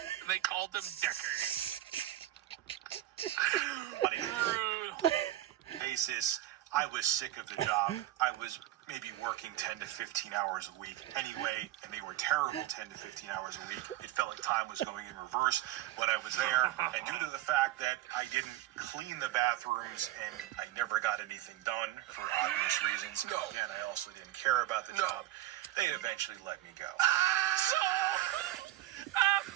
and they called him Dickers. On a Brutal. basis, I was sick of the job. I was maybe working 10 to 15 hours a week anyway, and they were terrible 10 to 15 hours a week. It felt like time was going in reverse when I was there, and due to the fact that I didn't clean the bathrooms and I never got anything done for obvious reasons, and I also didn't care about the job, they eventually let me go. So,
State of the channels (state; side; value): quieter; left; 14.7 dB